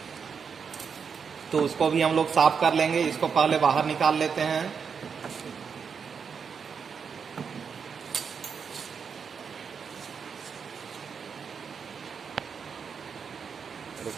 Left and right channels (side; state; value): left; quieter; 6.3 dB